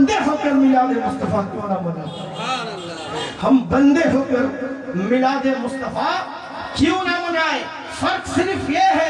ہو کر میلاد مصطفیٰ کیوں نہ منائیں؟ ہم بندے ہو کر میلاد مصطفیٰ کیوں نہ منائیں؟ فرق صرف یہ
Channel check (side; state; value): both; identical; correlation 1.00